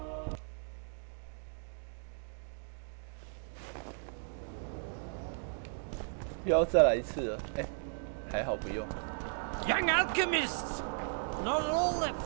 又要再来一次了，哎，还好不用。Young alchemists, not all that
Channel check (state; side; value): silent; left; 54 dB below the other